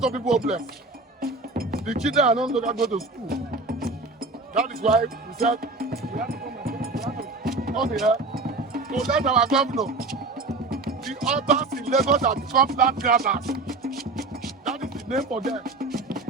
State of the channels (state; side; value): quieter; left; 3.3 dB